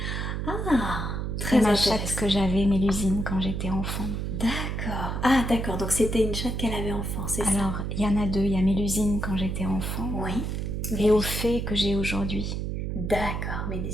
Ah, C'est très ma intéressant. chatte que j'avais, Mélusine, quand j'étais enfant. D'accord. Ah, d'accord. Donc, c'était une chatte qu'elle avait enfant, c'est ça? Alors, il y en a deux. Il y a Mélusine quand j'étais enfant Oui. et au fait que j'ai aujourd'hui. D'accord,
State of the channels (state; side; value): noise; right; hum, 2 dB below the sound